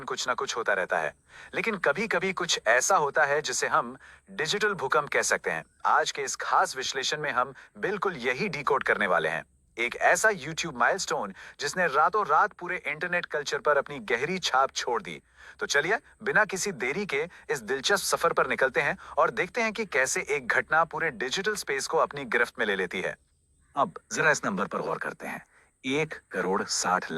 कुछ ना कुछ होता रहता है, लेकिन कभी कभी कुछ ऐसा होता है जिसे हम डिजिटल भूकंप कह सकते हैं। आज के इस खास विश्लेषण में हम बिल्कुल यही डिकोड करने वाले हैं। एक ऐसा YouTube माइलस्टोन जिसने रातों रात पूरे इंटरनेट कल्चर पर अपनी गहरी छाप छोड़ दी। तो चलिए बिना किसी देरी के इस दिलचस्प सफर पर निकलते हैं और देखते हैं कि कैसे एक घटना पूरे डिजिटल स्पेस को अपनी गिरफ्त में ले लेती है। अब जरा इस नंबर पर गौर करते हैं। 1 करोड़ 60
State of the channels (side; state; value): both; identical; correlation 1.00